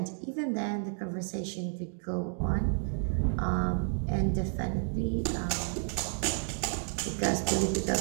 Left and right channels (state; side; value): silent; left; 56 dB below the other